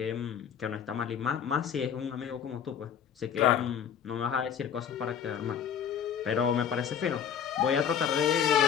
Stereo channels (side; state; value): right; quieter; 8.2 dB